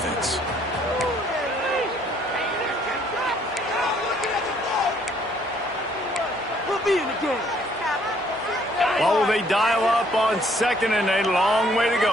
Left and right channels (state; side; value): normal; both; correlation 0.64